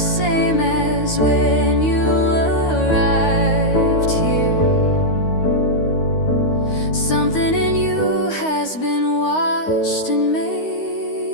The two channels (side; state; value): right; late; 13 ms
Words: as when you arrived here. Something in you has been washed and